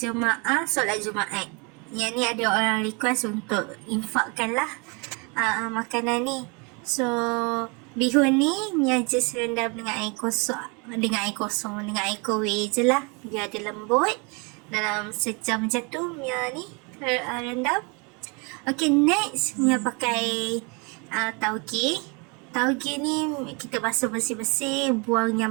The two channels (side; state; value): left; quieter; 31.6 dB